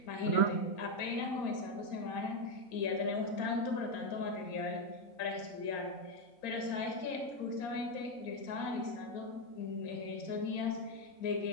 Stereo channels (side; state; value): right; late; 4.3 ms